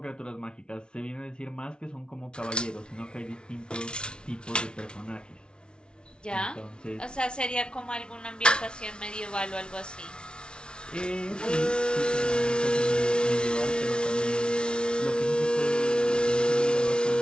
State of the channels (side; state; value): right; late; 0.056 ms